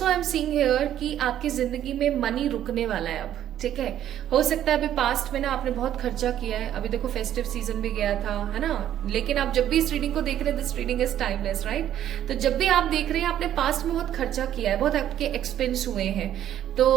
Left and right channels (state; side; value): quieter; left; 11.2 dB